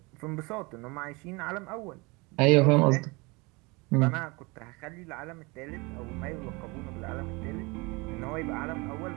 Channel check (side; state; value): left; quieter; 26.4 dB